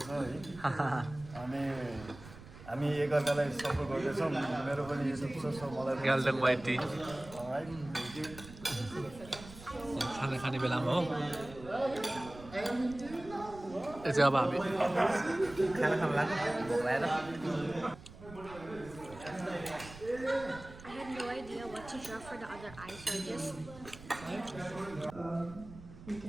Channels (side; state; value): right; noise; rumble, 17 dB below the sound